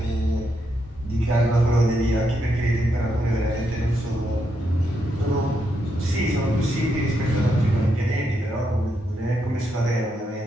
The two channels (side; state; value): both; normal; correlation 0.80